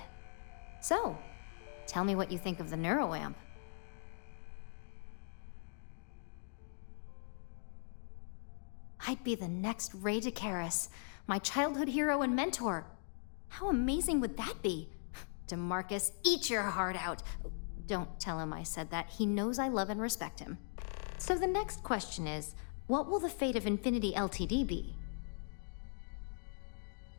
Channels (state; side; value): silent; right; digital silence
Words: So, tell me what you think of the neuroamp. I'd be the next Ray DeCaris, my childhood hero and mentor. How amazing would that be? DeMarcus, eat your heart out. Don't tell him I said that. He knows I love and respect him. So the next question is, what will the fate of Infinity Ltd be?